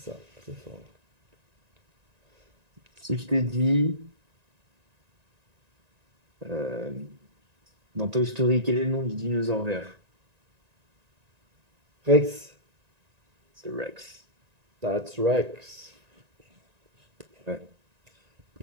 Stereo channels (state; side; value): late; left; 1.9 ms